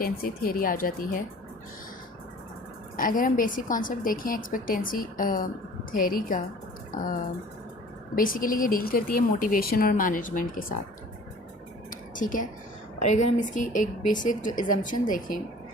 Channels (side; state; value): both; normal; correlation 0.47